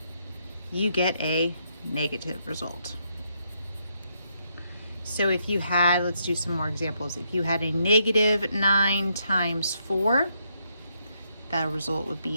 you get a negative result. So if you had, let's do some more examples. If you had a -9 times 4, that result would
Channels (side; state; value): both; inverted; correlation -0.77